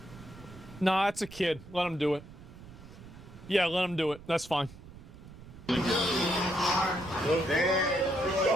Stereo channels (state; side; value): noise; right; rumble, 17 dB below the sound